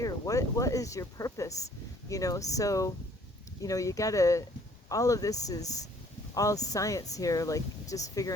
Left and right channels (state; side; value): normal; both; correlation 0.59